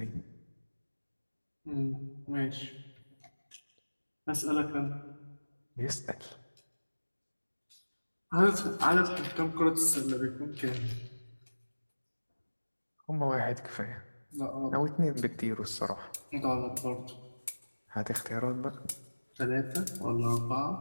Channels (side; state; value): both; inverted; correlation -1.00